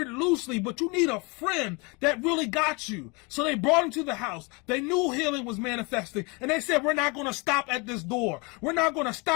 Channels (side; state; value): right; quieter; 29.1 dB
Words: loosely, but you need a friend that really got you. So they brought him to the house. They knew healing was manifesting. And they said, we're not going to stop at this door. We're not going to